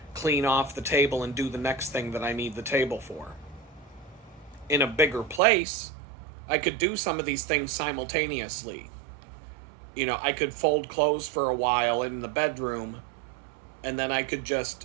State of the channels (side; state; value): left; drops out; at 5.4 s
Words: clean off the table and do the next thing that I need the table for. In a bigger place, I could do some of these things simultaneously. I could fold clothes for a while in the bedroom, and then I could